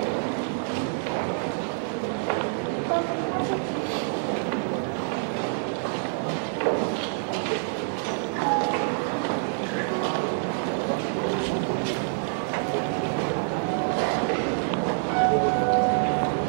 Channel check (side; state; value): left; silent; digital silence